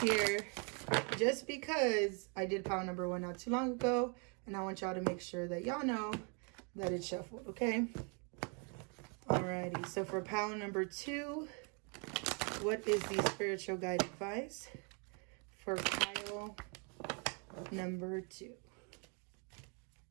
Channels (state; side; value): quieter; left; 36.4 dB